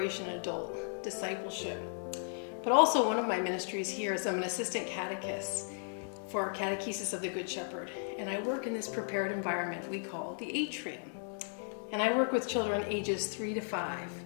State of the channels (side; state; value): right; silent; 54 dB below the other